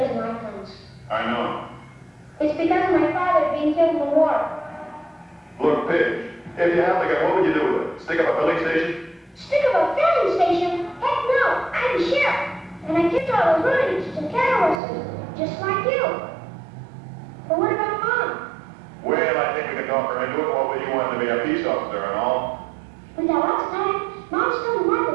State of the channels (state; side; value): drops out; left; at 14.8 s